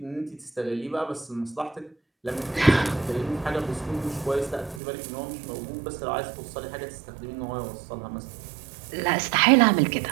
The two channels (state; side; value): drops out; left; at 4.8 s